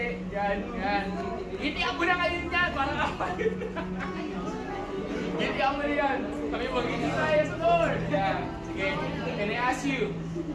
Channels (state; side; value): identical; both; correlation 1.00